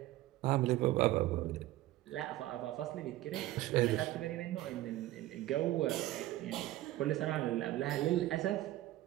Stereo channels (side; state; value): left; quieter; 15.8 dB